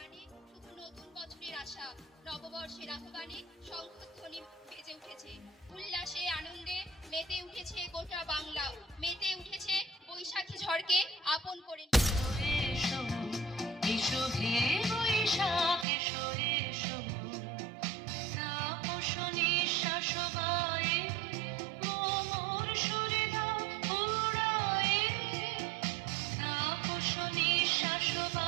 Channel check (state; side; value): drops out; left; at 15.9 s